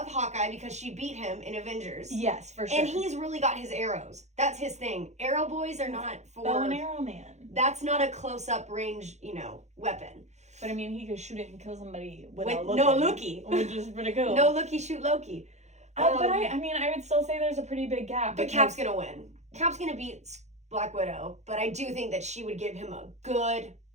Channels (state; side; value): late; left; 0.33 ms